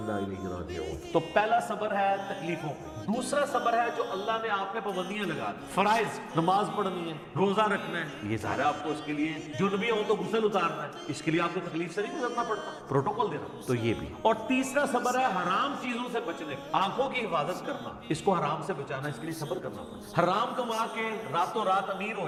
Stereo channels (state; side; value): identical; both; correlation 1.00